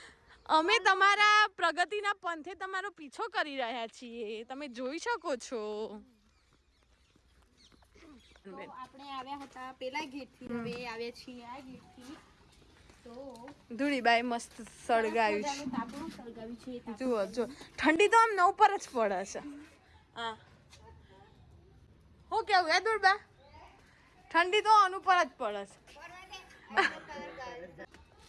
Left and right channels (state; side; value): identical; both; correlation 1.00